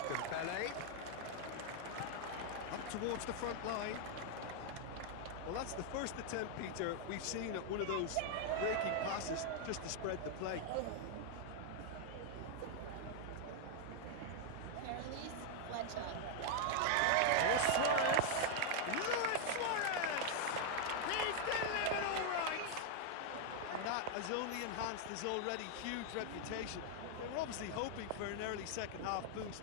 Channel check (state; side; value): different; both; correlation 0.00